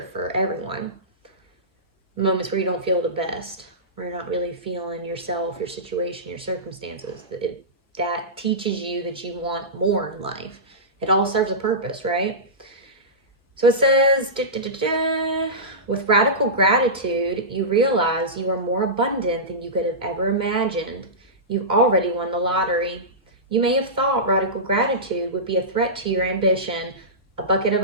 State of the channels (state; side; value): normal; both; correlation -0.17